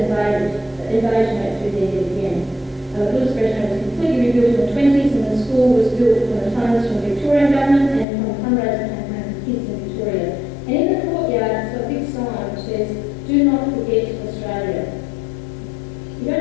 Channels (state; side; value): drops out; right; at 8.1 s